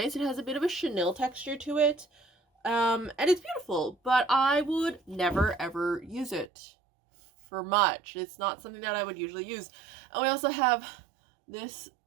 It has a bit of a chenille texture to it. And it's beautiful, but I would never ever use it for much. It's not something that I would usually use. And we also have this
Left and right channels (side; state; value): left; drops out; at 6.5 s